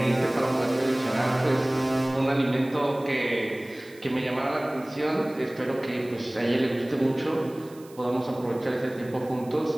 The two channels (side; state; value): right; noise; hiss, 24 dB below the sound